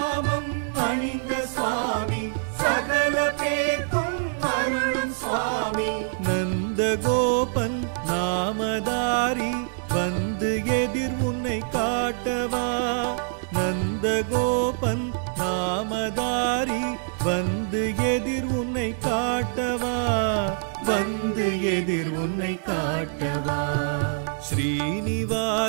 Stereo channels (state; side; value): silent; left; 62 dB below the other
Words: அணிந்த சுவாமி சகல பேர்க்கும் அருளும் சுவாமி நந்தகோபன் நாமதாரி வந்து எதிர் உன்னை காட்டவா நந்தகோபன் நாமதாரி வந்து எதிர் உன்னை காட்டவா வந்து எதிர் உன்னை காட்டவா